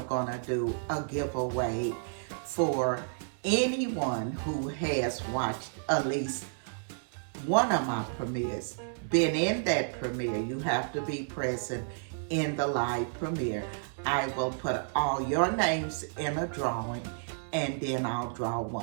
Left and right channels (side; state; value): left; silent; digital silence